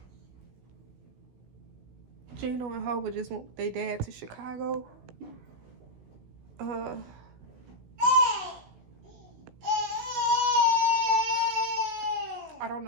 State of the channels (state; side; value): late; left; 16 ms